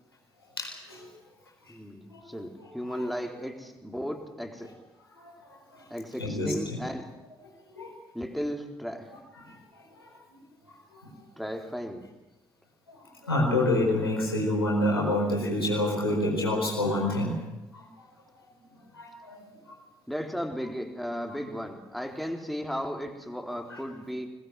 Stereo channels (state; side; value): normal; both; correlation 0.56